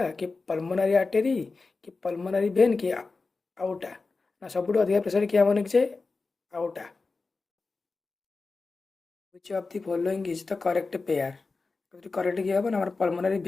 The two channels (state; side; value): quieter; right; 4.0 dB